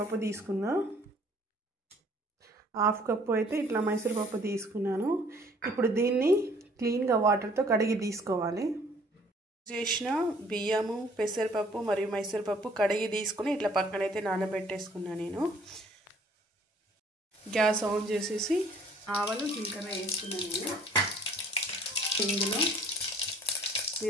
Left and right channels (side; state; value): both; normal; correlation 0.57